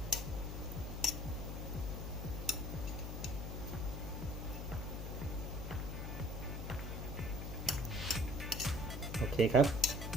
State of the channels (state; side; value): noise; left; hum, 4 dB below the sound